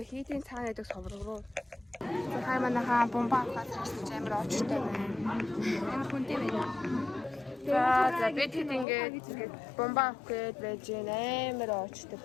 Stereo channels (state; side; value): drops out; right; at 8.8 s